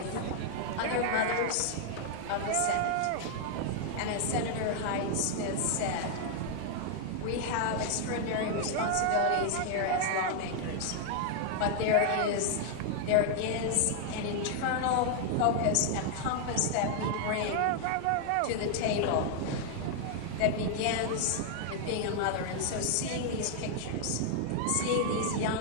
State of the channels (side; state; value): both; different; correlation 0.00